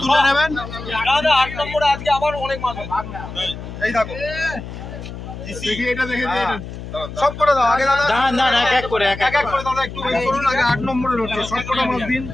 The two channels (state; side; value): noise; left; hum, 10 dB below the sound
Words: তুলে নেবেন। দাদা 8 নম্বরে আজকে আবার অনেক মাছ হবে। এই দেখো দেখি এটা দেখে দিন সব করে দাও আগে দাদা। না না এক এক করে এক এক করে দাদা একটু ওয়েট করুন। আগে 8 নম্বরে রয়েছে সব কটা মাছ দিন।